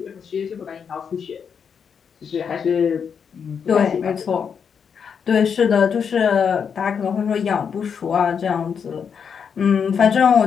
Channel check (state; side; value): quieter; right; 6.8 dB